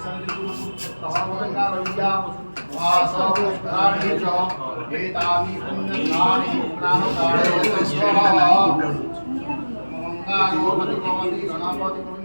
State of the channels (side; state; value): both; inverted; correlation -1.00